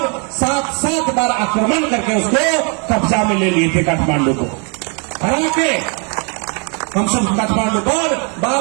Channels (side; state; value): left; quieter; 36.3 dB